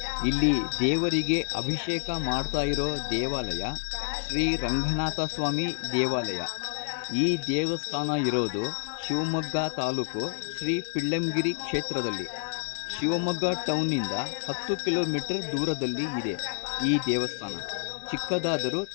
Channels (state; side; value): silent; right; 59 dB below the other